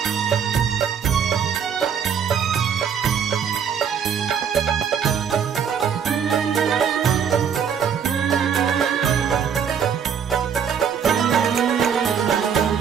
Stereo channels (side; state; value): left; quieter; 7.5 dB